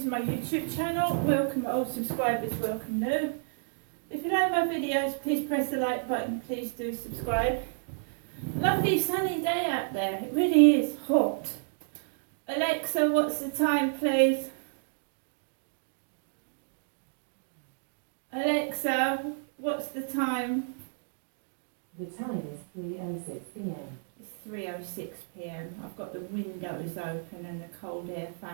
my YouTube channel. Welcome old subscribers, welcome new. If you like my videos, please press the like button. Please do subscribe. Lovely sunny day out there. It really is hot. Alexa, what's the time, please? Alexa, what's the time? The time is 3:06 p.m. It's 3:06 p.m. I've got the windows open and the cold air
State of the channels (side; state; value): left; silent; digital silence